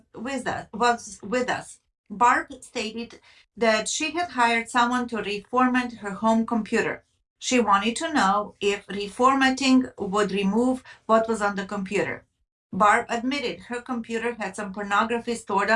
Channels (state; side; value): identical; both; correlation 1.00